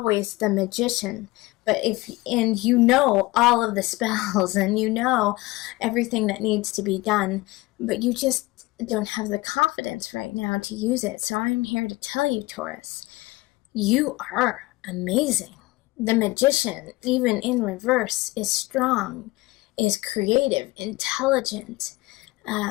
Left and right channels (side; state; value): right; quieter; 21.2 dB